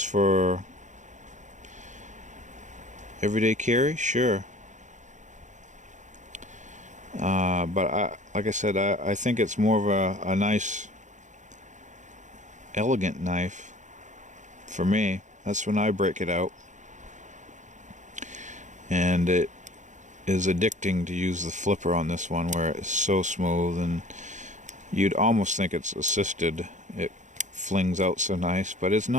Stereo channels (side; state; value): left; late; 0.35 ms